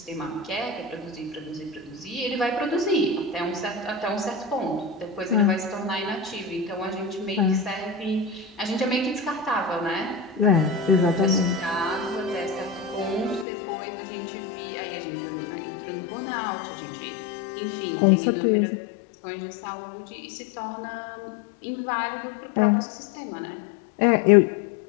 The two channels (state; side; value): drops out; right; at 13.5 s